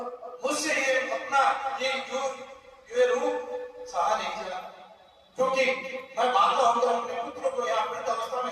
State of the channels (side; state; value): both; identical; correlation 1.00